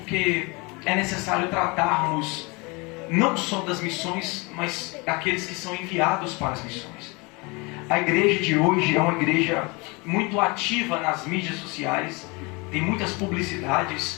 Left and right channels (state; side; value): quieter; right; 27.6 dB